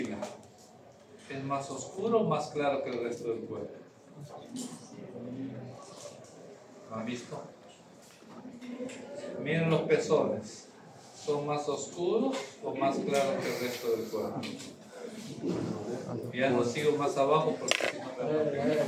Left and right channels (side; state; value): both; identical; correlation 1.00